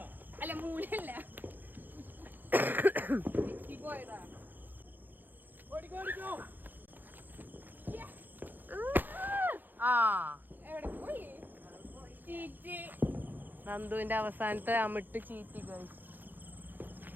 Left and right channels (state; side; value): late; left; 0.088 ms